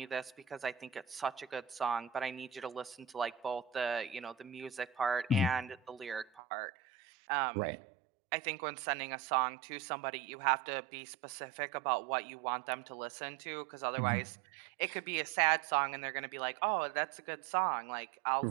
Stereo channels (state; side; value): drops out; left; at 6.4 s